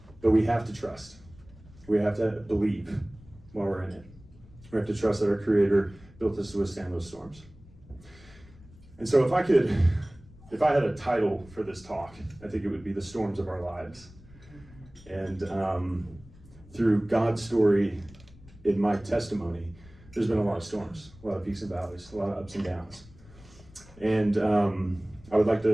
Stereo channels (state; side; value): noise; left; rumble, 22 dB below the sound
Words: But we have to trust. We have to believe while we're in it. We have to trust that our Creator built us to withstand those storms. And so if I had a title for this talk, I think it would be The Storms of Our Lives. And through God's story in my testimony, there's been a lot of storms, a lot of peaks and valleys, a lot of ups and downs. And I would like